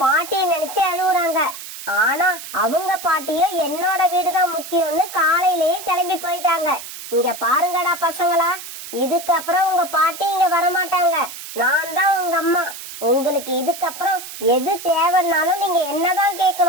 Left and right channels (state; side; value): noise; right; hiss, 12 dB below the sound